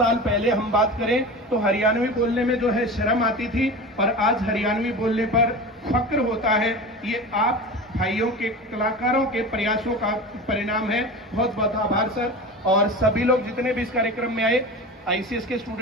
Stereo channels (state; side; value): normal; both; correlation 0.30